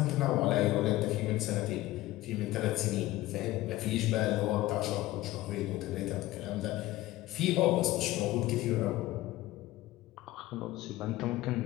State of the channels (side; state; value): right; quieter; 16.8 dB